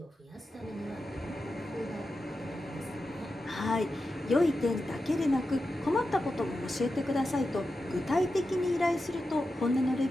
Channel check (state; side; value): normal; both; correlation 0.90